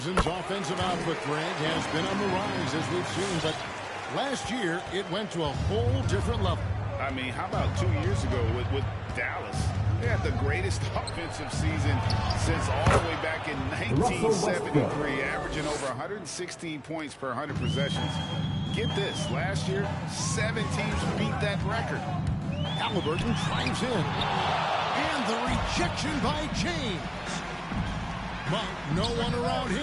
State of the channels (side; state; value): both; identical; correlation 1.00